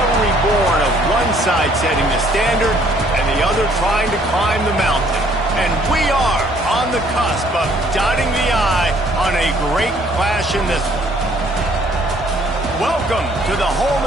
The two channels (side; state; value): both; normal; correlation 0.62